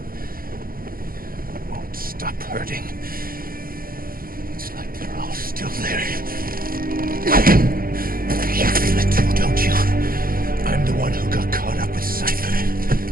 won't stop hurting. It's like they're all still there. You feel it too, don't you? I'm the one who got caught up with Cypher.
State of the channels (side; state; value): left; late; 0.42 ms